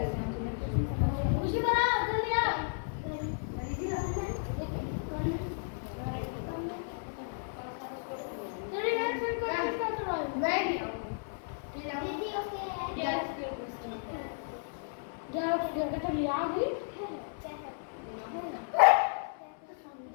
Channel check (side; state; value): right; silent; 55 dB below the other